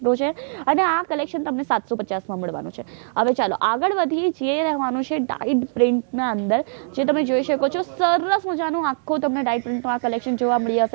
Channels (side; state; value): left; silent; digital silence